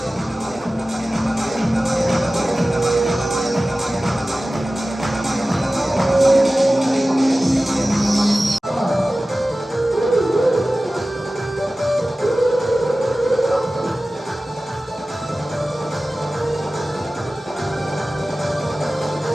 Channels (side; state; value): both; normal; correlation 0.96